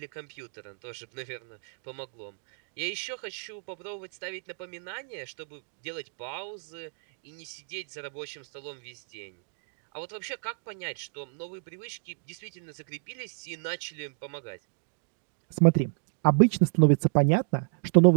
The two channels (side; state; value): left; silent; digital silence